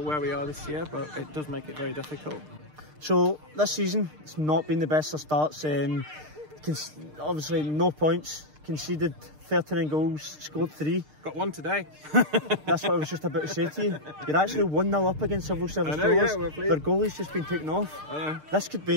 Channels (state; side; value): late; left; 6.6 ms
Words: we are this year, but it does make it very difficult. So this season, it's not been the best of starts. Obviously, no points, conceded 39 goals, scored 3. Got 1 today. That's what I was just about to say to you. You're actually 1-0 up against civil service strollers. Yeah, their goalie's just been taken off. I know. This could